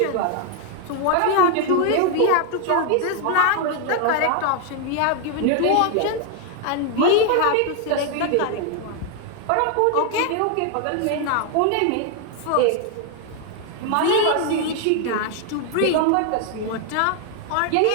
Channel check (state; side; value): different; both; correlation 0.00